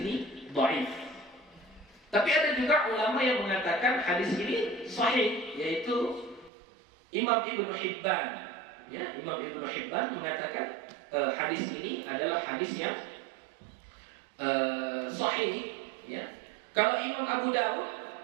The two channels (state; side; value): drops out; left; at 6.5 s